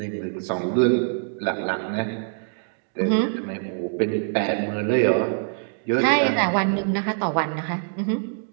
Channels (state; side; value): silent; left; digital silence